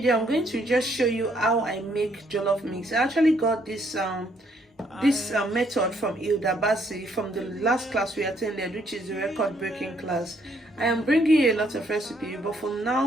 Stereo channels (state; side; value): normal; both; correlation 0.69